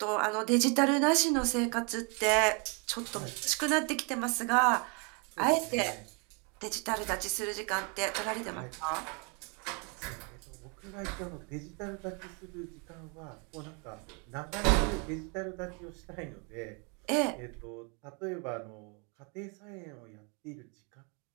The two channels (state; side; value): quieter; left; 34.2 dB